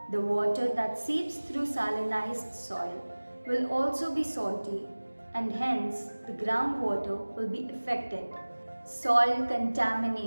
The water that seeps through salinized soil will also be salty and hence the groundwater will be affected. Soil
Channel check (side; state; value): both; inverted; correlation -1.00